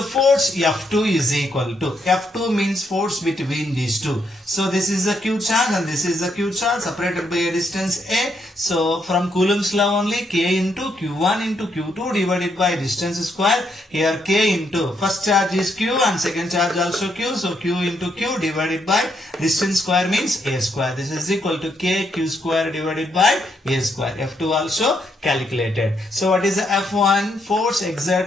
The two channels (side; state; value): both; normal; correlation 0.76